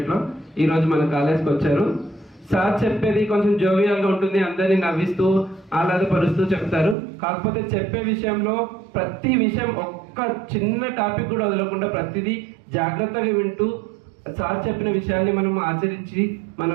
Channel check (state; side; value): drops out; left; at 7.0 s